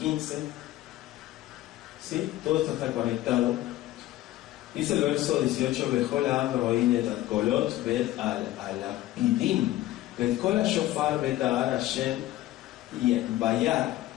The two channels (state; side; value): quieter; right; 15.3 dB